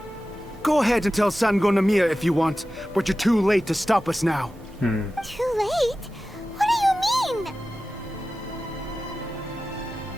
Go ahead and tell Sango Namiya if you want, but you're too late to stop us now. Too late? What do you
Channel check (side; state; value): both; normal; correlation 0.94